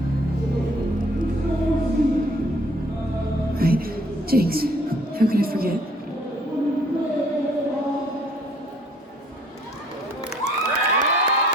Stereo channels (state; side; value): normal; both; correlation 0.60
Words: Right, Jinx. How could I forget?